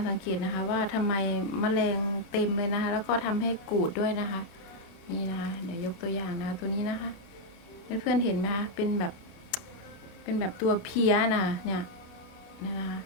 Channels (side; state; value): right; late; 30 ms